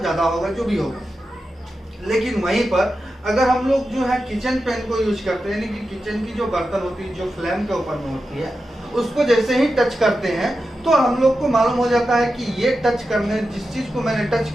होगा, जो भी होगा। लेकिन वहीं पर अगर हम लोग जो है किचन पेन को यूज करते हैं, यानी कि किचन की जो बर्तन होती है जो फ्लेम के ऊपर में होती है, उसको जैसे ही टच करते हैं तो हम लोग को मालूम हो जाता है कि ये टच करने, जिस चीज़ को मैंने टच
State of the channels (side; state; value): both; normal; correlation 0.90